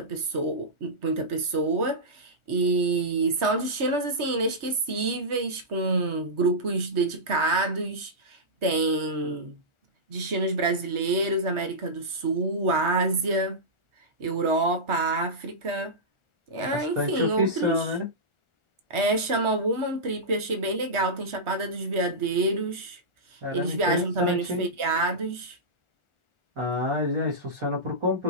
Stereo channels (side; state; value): left; late; 1.4 ms